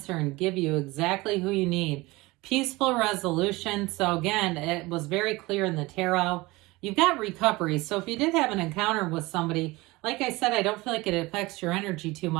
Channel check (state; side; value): quieter; left; 21.6 dB